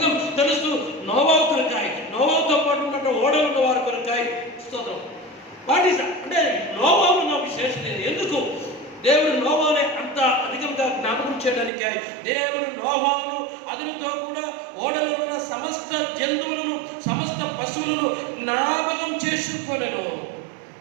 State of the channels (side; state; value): left; drops out; at 11.7 s